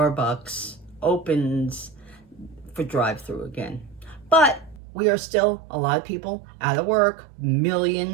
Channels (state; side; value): drops out; left; at 4.8 s